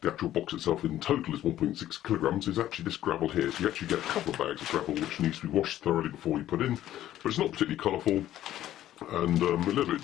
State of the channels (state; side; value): quieter; right; 12.9 dB